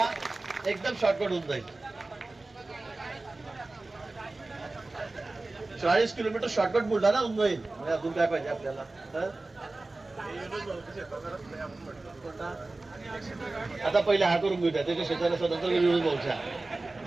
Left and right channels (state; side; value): quieter; left; 3.1 dB